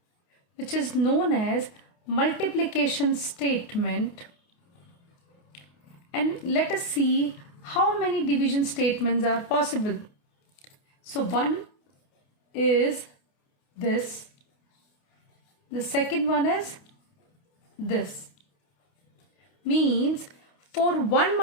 which is known as multiplication statement, and let us see how many division statements are possible. So one is this, the second one is this. Means for one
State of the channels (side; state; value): right; late; 28 ms